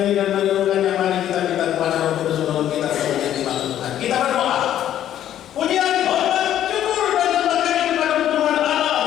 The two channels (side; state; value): right; quieter; 11.3 dB